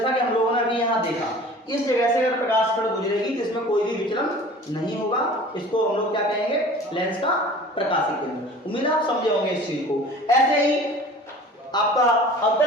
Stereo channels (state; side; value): normal; both; correlation 0.43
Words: कि हम लोगों ने अभी यहाँ देखा, इस जगह से अगर प्रकाश किरण गुजरेगी तो इसमें कोई भी विचलन नहीं होगा, इसको हम लोग क्या कहेंगे, लेंस का प्रकाशिक केंद्र। उम्मीद है आप समझे होंगे इस चीज को। ऐसे ही आपका